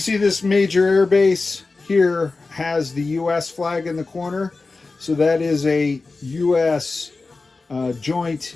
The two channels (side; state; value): right; quieter; 3.8 dB